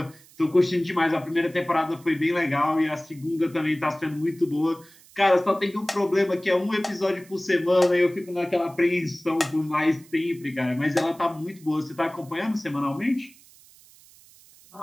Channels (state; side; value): noise; right; hiss, 25 dB below the sound